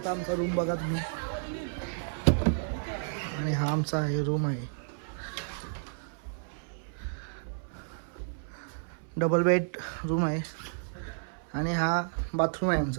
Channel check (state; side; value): silent; left; 57 dB below the other